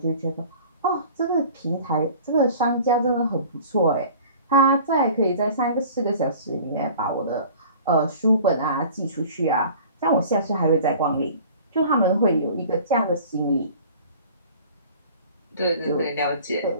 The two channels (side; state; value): both; inverted; correlation -0.45